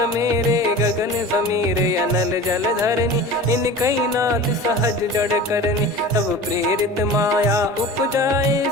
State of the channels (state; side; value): normal; both; correlation 0.36